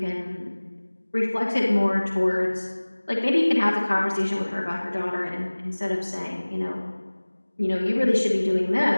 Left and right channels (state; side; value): inverted; both; correlation -1.00